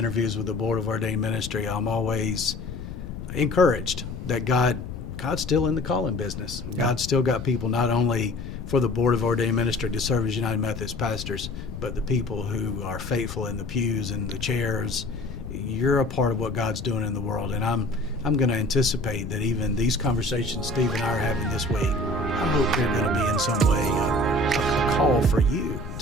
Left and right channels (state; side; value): noise; left; rumble, 9 dB below the sound